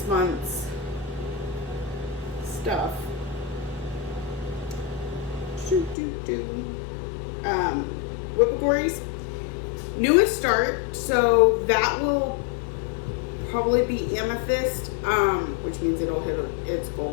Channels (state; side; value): drops out; right; at 6.0 s